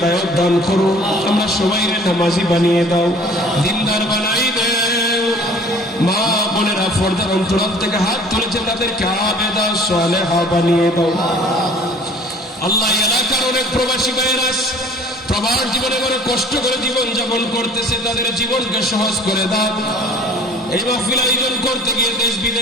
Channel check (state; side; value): normal; both; correlation 0.50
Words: দান করো, আমরা সবাইরে নামাজি বানিয়ে দাও, দিনদার বানাই দাও। মা বোনেরা পর্দার অন্তরাল থেকে হাত তুলেছে, তাদেরকে আবেদা সালেহা বানিয়ে দাও। আল্লাহ, এলাকার অনেক প্রবাসী ভাইয়েরা প্রবাস জীবনে করে কষ্ট করে জীবন যাপন করতেছে, তাদের জীবনকে সহজ করে দাও। এই মাহফিল আয়োজন করতে গিয়ে দেশ